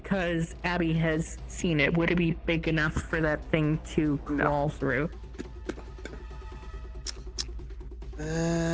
Abby has seen it, would it be big enough for that thing to crawl through?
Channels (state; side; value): identical; both; correlation 1.00